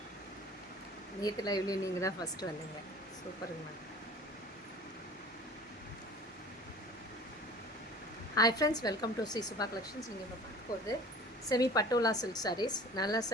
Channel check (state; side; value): normal; both; correlation 0.44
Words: நேற்று லைவ்லேயும் நீங்கள் தான் ஃபஸ்ட்டு வந்தீங்க. சூப்பருங்க ma'am. Hi friends, welcome to Sri Subha collections. நீங்கள் இப்போ பார்க்க போகிறது செமி பட்டோலா சில்க் சாரீஸ். நல்லா